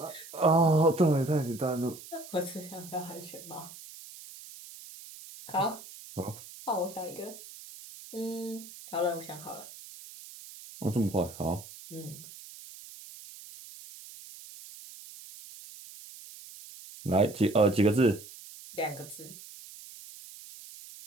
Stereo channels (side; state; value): right; noise; hiss, 16 dB below the sound